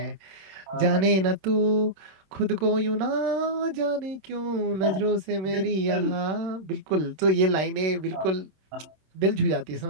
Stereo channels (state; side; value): late; left; 26 ms